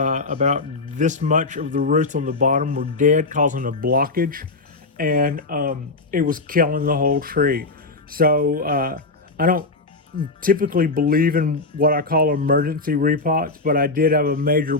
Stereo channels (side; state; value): right; quieter; 3.4 dB